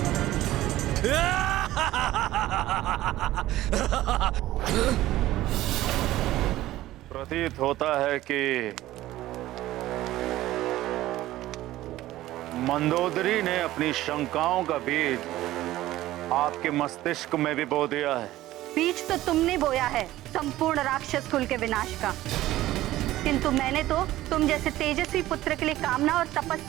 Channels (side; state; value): left; quieter; 15.5 dB